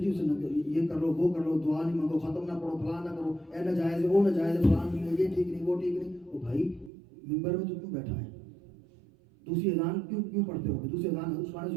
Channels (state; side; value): drops out; left; at 6.9 s